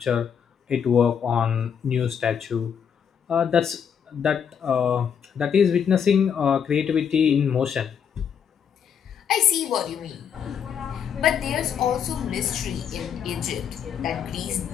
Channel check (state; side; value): quieter; right; 7.7 dB